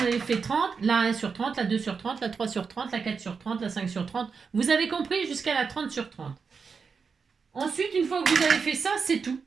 fait 30, la 1 sur 30, la 2 sur 30, la 3 sur 30, la 4 sur 30, la 5 sur 30. Vous avez compris jusqu'à la 30 sur 30. Ensuite, une fois que vous avez fait ça, c'est tout.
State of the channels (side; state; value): left; quieter; 5.4 dB